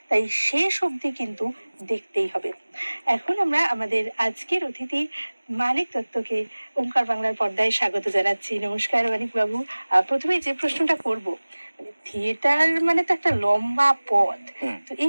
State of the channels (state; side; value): inverted; both; correlation -1.00